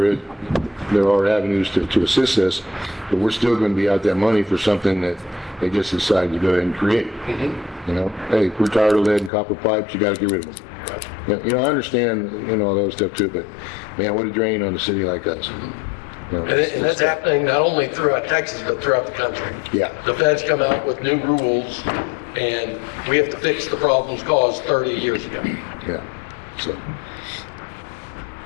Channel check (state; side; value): drops out; right; at 9.3 s